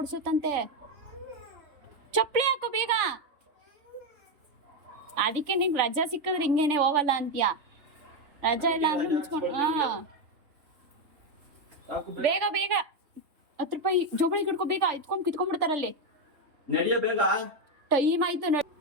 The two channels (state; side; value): late; left; 3.5 ms